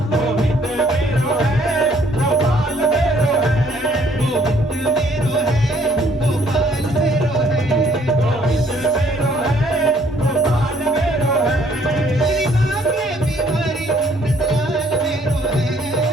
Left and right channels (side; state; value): both; normal; correlation 0.63